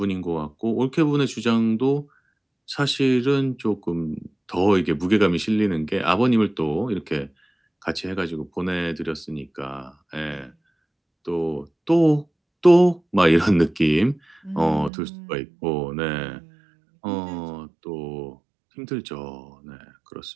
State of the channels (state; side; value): drops out; left; at 14.9 s